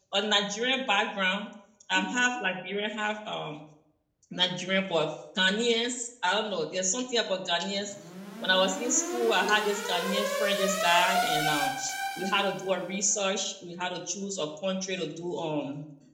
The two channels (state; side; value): identical; both; correlation 1.00